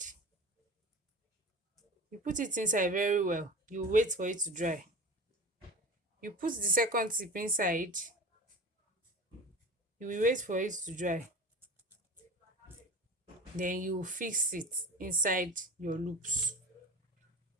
You put it inside very well. You wait for it to dry. You put the second tip inside. You will wait for it to dry. Then you fix it inside your loops.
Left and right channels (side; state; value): both; normal; correlation 0.34